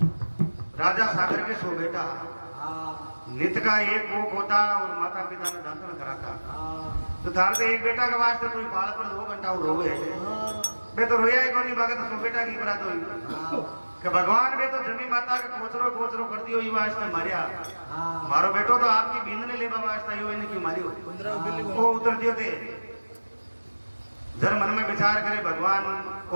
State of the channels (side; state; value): both; inverted; correlation -1.00